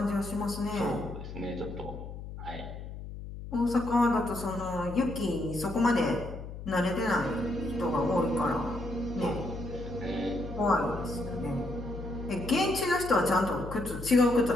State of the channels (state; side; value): noise; left; hum, 10 dB below the sound